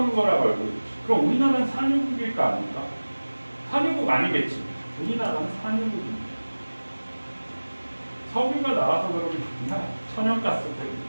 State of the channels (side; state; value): both; inverted; correlation -1.00